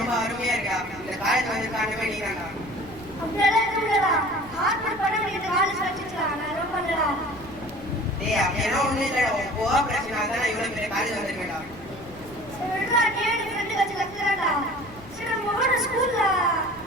அருமையா இருக்கா. இந்த காலேஜ் வந்து காரணமே நீ தான்டா. அப்படியெல்லாம் ஒண்ணும் இல்லடா. உன் கோஆபரேஷனால தான் நான் இவ்வளவு பெரிய காலேஜ் வந்திருக்கேன்டா.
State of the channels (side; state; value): left; noise; rumble, 20 dB below the sound